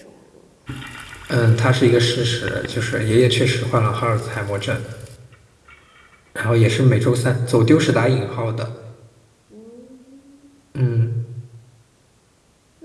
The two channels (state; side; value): identical; both; correlation 1.00